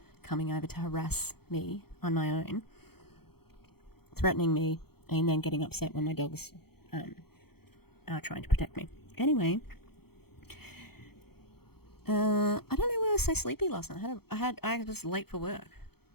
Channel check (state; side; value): late; right; 0.96 ms